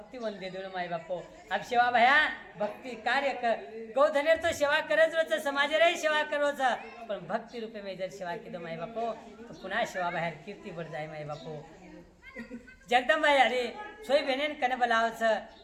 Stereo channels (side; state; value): both; identical; correlation 1.00